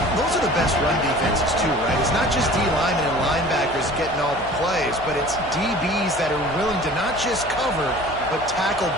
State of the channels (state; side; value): noise; left; hum, 17 dB below the sound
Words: Those are the best run defenses too, right? It's not just D linemen and linebackers getting all the plays, but it's DBs that are willing to not just cover, but tackle